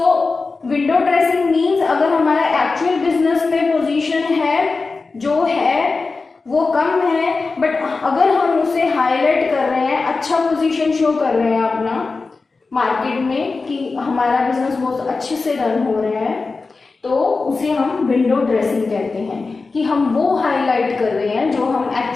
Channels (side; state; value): right; quieter; 4.0 dB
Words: window dressing means अगर हमारा actual business में position है जो है वो कम है, but अगर हम उसे हाईलाइट कर रहे हैं, अच्छा पोजीशन शो कर रहे हैं अपना मार्केट में कि हमारा बिजनेस बहुत अच्छे से रन हो रहा है, तो उसे हम विंडो ड्रेसिंग कहते हैं कि हम वो हाईलाइट कर रहे हैं जो हम